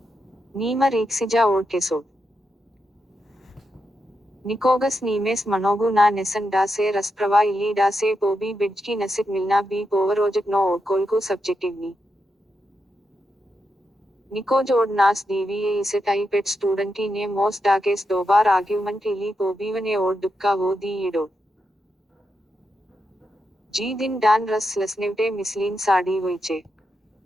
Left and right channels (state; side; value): normal; both; correlation 0.85